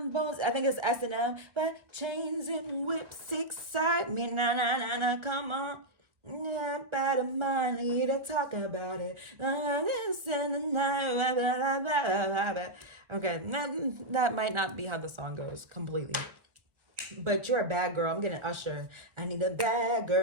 I think it's S&M, but chains and whips excite me. Na na na na, come on. Yeah, better money to talk about it. This and the night. Okay, that might not be how the song goes completely. But you're a bad girl. I'm getting Usher. I need a bad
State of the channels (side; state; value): left; late; 1.3 ms